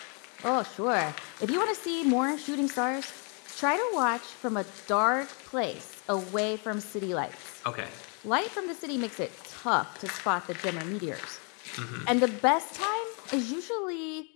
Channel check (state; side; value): quieter; right; 36.7 dB